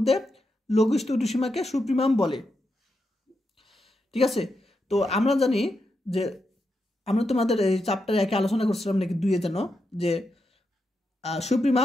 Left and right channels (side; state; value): both; normal; correlation 0.85